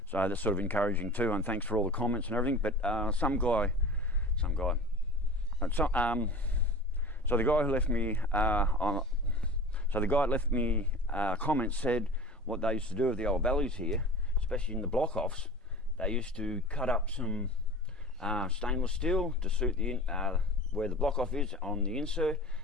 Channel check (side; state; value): both; normal; correlation 0.36